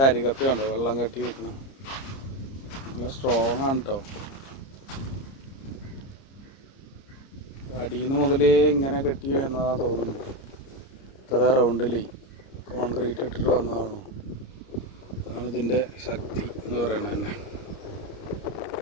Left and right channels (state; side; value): late; right; 30 ms